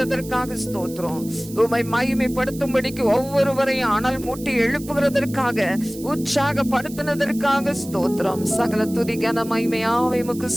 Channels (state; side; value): noise; right; hiss, 17 dB below the sound